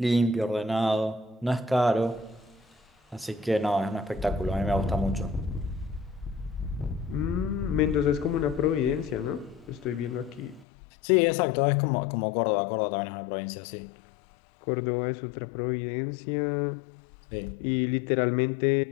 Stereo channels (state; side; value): drops out; right; at 10.7 s